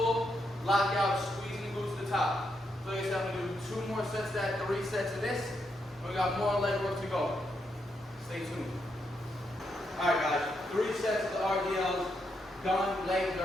lockout, squeezing the glutes to the top. So like I said, I'm going to do 2 more sets of that, 3 sets of this, and we got more leg work to go. Stay tuned. Alright guys, 3 sets of the RDLs done. Legs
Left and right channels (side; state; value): both; normal; correlation 0.80